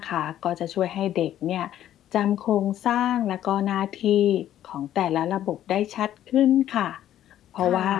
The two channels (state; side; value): quieter; right; 11.9 dB